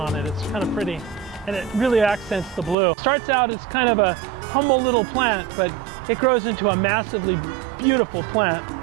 it. It's kind of pretty. And it really accents the blue. It starts out as kind of a humble little plant, but it grows into a massively beautiful plant.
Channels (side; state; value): left; drops out; at 2.8 s